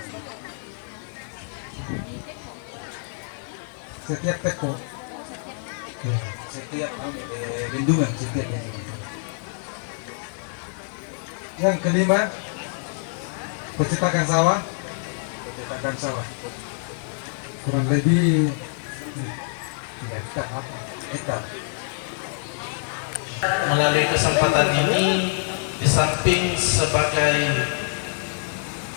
Setiap teko. Setiap bendungan, setiap Yang kelima, pencetakan sawah. Kurang lebih 3 hektar. Melalui kesempatan ini, di samping sebagai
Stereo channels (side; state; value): right; silent; digital silence